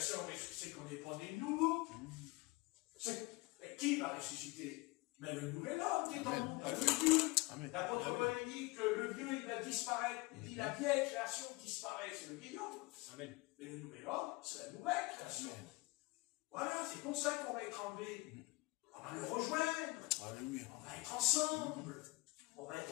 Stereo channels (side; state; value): right; quieter; 24.1 dB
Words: on c'est qu'on n'est pas né de nouveau. Mais qui va ressusciter? Mais le nouvel homme qui est en nous, le Dieu. L'apôtre Paul dit que le vieux, il va disparaître. Il dit la vieille création disparaît, c'est le vieil homme. Amen. Mais le nouvel homme, c'est la nouvelle création. Voilà, c'est pour ça qu'on va être enlevé. On va le rejoindre. Alléluia. On va être ensemble. On va être